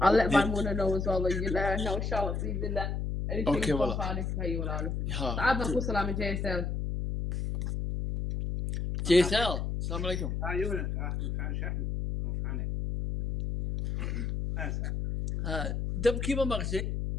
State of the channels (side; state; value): left; noise; hum, 1 dB below the sound